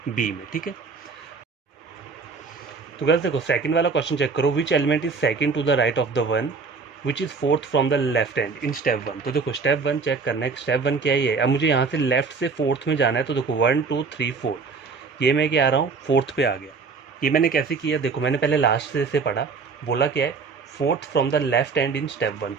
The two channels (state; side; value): quieter; left; 4.8 dB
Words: बी में। ठीक है, तो गाइस देखो सेकंड वाला क्वेश्चन चेक करो, which element is second to the right of the one which is fourth from the left hand in step 1। तो देखो स्टेप 1 चेक करना है, स्टेप 1 क्या है, अब मुझे यहाँ से लेफ्ट से फोर्थ में जाना है। तो देखो 1 2 3 4, ये मैं क्या आ रहा हूँ, फोर्थ पे आ गया। ये मैंने कैसे किया, देखो मैंने पहले लास्ट से पढ़ा, बोला क्या है, fourth from the left hand in step 1।